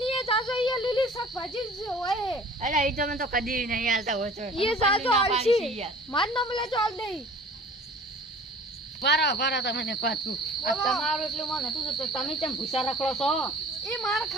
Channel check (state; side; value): normal; both; correlation 0.46